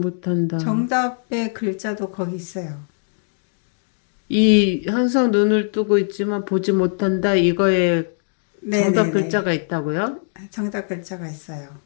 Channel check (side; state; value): right; silent; digital silence